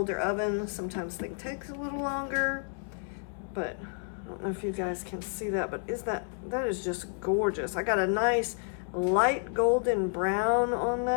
oven, sometimes things take a little longer. But I don't know if you guys can see that, but that is just gorgeous. I got a nice light golden brown on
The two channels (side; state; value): right; silent; 55 dB below the other